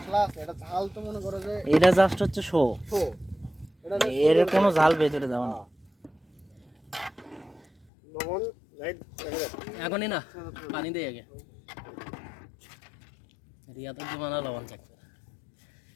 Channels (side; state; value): right; drops out; at 7.9 s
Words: আছে এটা ঝাল তো মনে করো যে এটা জাস্ট হচ্ছে শো শো এটা এর কোনো ঝাল ভেতরে যাবে না লবণ লাইট এখনই না পানি দে আগে রিয়া তো জমানা লবণ চেক